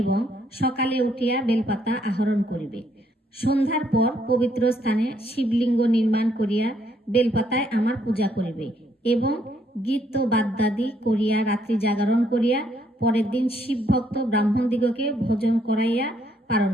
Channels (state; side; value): normal; both; correlation 0.71